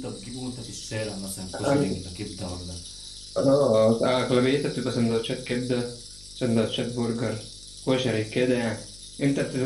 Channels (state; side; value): noise; left; hum, 21 dB below the sound